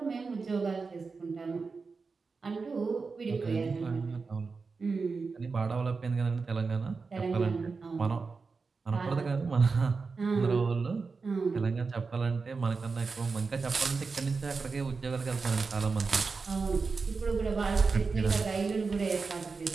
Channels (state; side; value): quieter; left; 4.6 dB